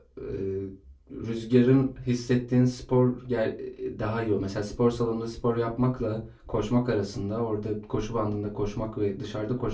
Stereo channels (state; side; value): identical; both; correlation 1.00